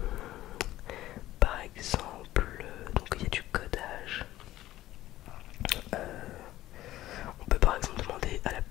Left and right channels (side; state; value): right; quieter; 15.0 dB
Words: par exemple donc il y a du codage. On peut par exemple demander